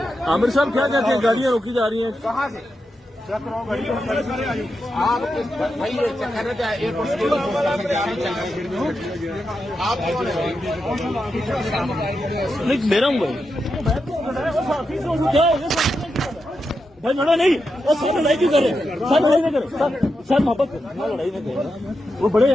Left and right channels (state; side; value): normal; both; correlation 0.87